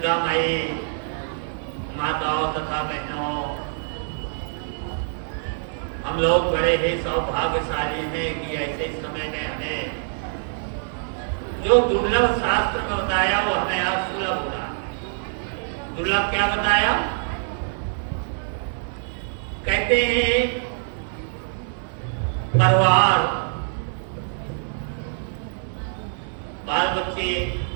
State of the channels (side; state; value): left; silent; digital silence